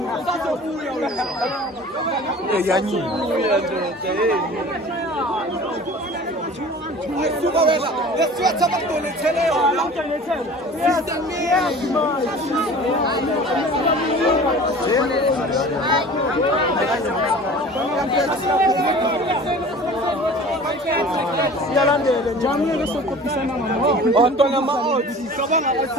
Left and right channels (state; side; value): normal; both; correlation 0.42